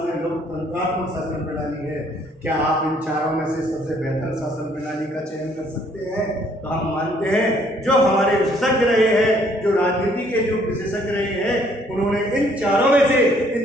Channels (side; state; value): both; normal; correlation 0.64